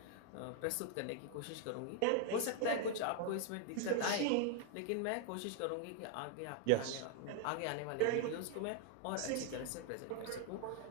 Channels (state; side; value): different; both; correlation 0.00